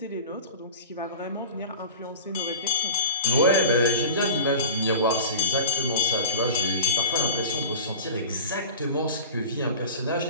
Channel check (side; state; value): both; inverted; correlation -0.36